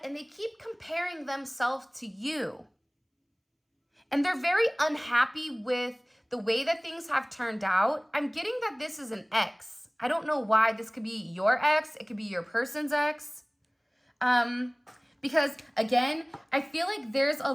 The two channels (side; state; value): both; identical; correlation 1.00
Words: and they keep comparing themselves to you. And they're very unhappy with the way that things have turned out. I'm getting that this is an ex. I don't know why. This could be your ex. It could be your person's ex. Because again, I feel like there's a